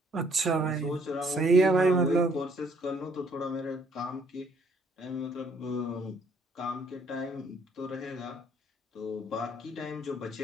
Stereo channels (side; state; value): both; normal; correlation 0.64